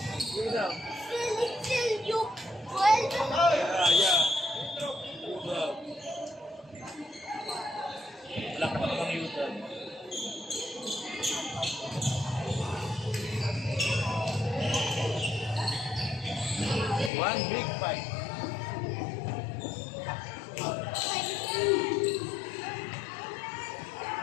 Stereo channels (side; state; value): right; drops out; at 17.1 s